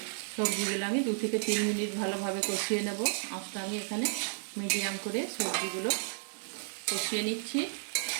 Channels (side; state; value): left; silent; digital silence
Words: সবজিগুলো আমি 2 থেকে 3 মিনিট ভালোভাবে কষিয়ে নেব। আঁচটা আমি এখানে মিডিয়াম করে সবজিগুলো কষিয়ে নিচ্ছি।